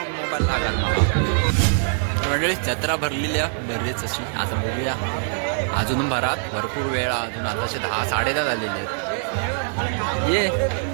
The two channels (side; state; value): left; silent; digital silence